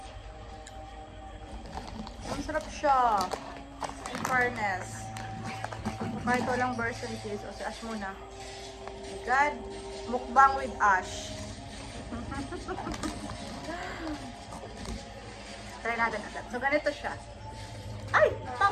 Masarap siya. In fairness. Kahit walang Borsan cheese. O si Ash muna. Oh my God. Mukbang with Ash. Try natin agad. So, ganito siya. Ay!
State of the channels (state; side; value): identical; both; correlation 1.00